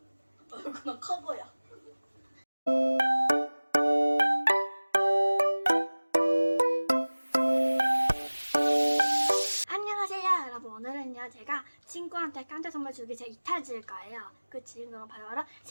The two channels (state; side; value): inverted; both; correlation -1.00